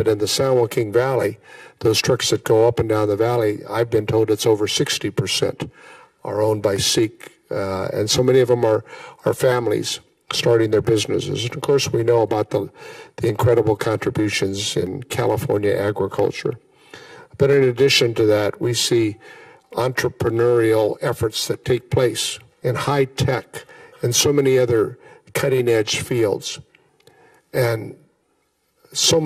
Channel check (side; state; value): both; identical; correlation 1.00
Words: in the San Joaquin Valley, those trucks that go up and down the valley, I've been told it's over 60% are owned by Sikh, and so many of them are families starting their businesses. And of course, we know about the incredible contributions in California agriculture. But in addition to that, we see entrepreneurial efforts that take place in high tech and so many other cutting-edge fields. And so